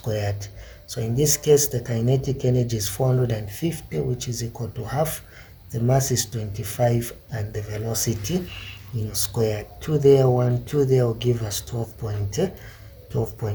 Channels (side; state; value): both; identical; correlation 1.00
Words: So in this case, the kinetic energy is 450, which is equal to half. The mass is 25, and the velocity, squared. 2 there, 1, 2 there will give us